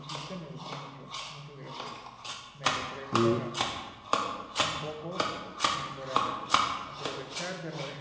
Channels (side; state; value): both; identical; correlation 1.00